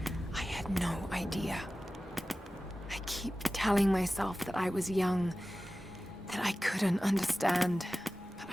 I had no idea. I keep telling myself that I was young, that I couldn't understand, but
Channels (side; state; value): both; normal; correlation 0.95